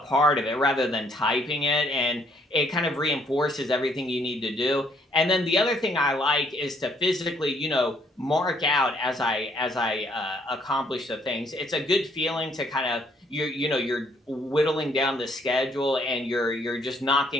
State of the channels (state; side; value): normal; both; correlation 0.66